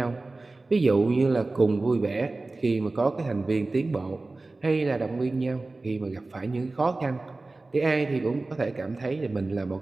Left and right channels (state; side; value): quieter; left; 3.2 dB